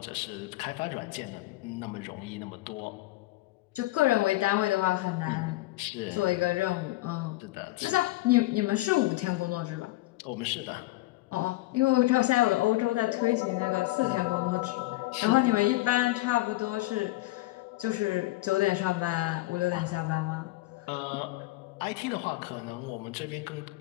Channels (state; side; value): quieter; right; 18.7 dB